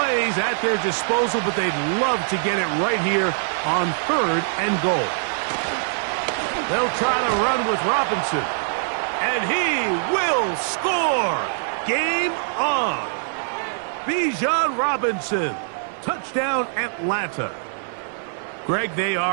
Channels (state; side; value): silent; left; 58 dB below the other